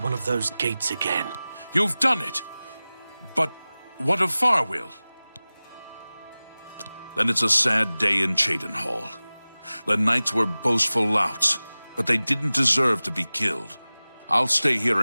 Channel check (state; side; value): inverted; both; correlation -0.98